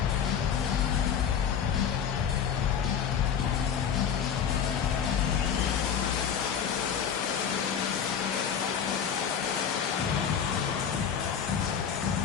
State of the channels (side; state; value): right; quieter; 7.9 dB